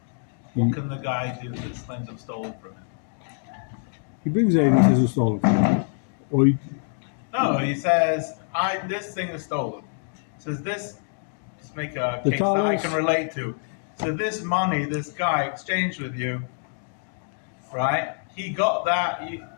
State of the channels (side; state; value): right; silent; digital silence